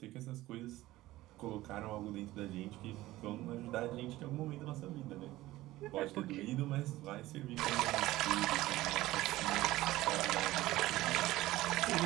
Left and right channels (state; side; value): quieter; left; 17.0 dB